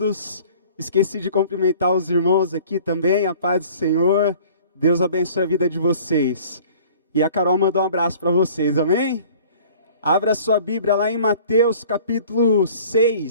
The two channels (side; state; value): both; inverted; correlation -0.49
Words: Esqueci de cumprimentar os irmãos aqui também. A paz do Senhor. Deus abençoe a vida de vocês. E a Carol mandou um abraço para vocês, amém? Abra sua Bíblia lá em Mateus capítulo